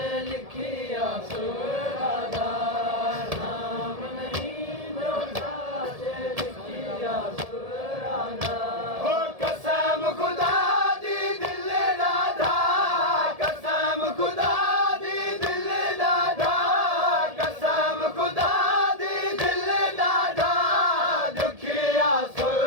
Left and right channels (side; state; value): left; late; 1.7 ms